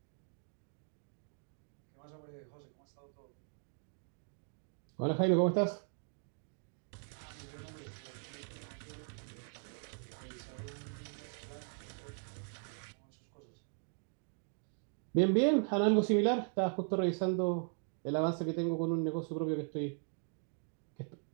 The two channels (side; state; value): left; silent; 52 dB below the other